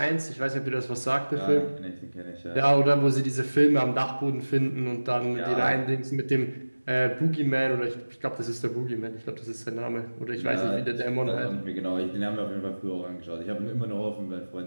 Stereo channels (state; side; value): inverted; both; correlation -1.00